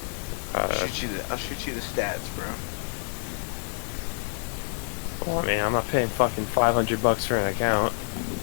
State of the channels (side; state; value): right; silent; 56 dB below the other